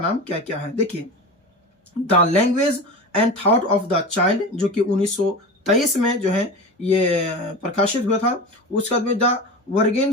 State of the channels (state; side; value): normal; both; correlation 0.28